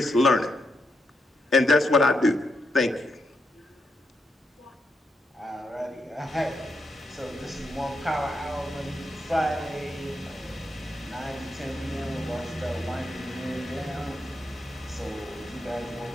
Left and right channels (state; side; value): normal; both; correlation 0.82